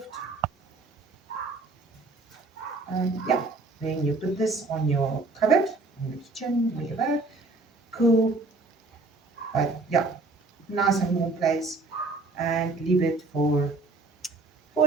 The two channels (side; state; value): left; quieter; 3.5 dB